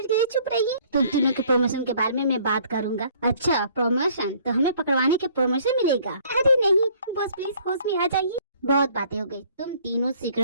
के लिए चुप रहिए। तुम तीनों के प्रमोशन के बारे में मैं बात करूंगा। अच्छा प्रमोशन? तो हमें पकड़वाने के प्रमोशन मिलेगा? अरे नहीं बॉस प्लीज होश में आ जाइए। बहुत बातें हो गई, तुम तीनों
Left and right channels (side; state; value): both; inverted; correlation -0.58